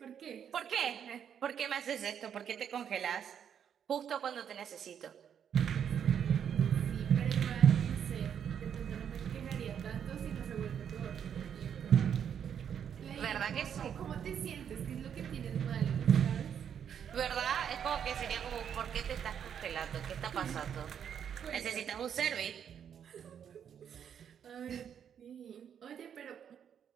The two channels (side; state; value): left; quieter; 8.4 dB